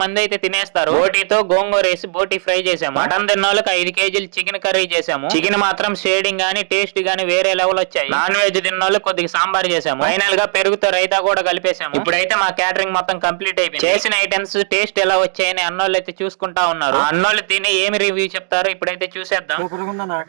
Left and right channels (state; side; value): silent; left; 68 dB below the other